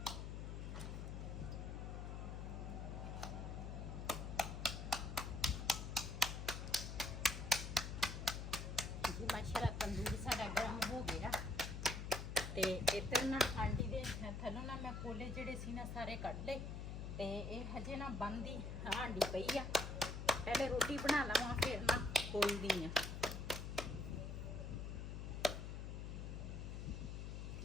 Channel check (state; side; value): noise; left; hum, 5 dB below the sound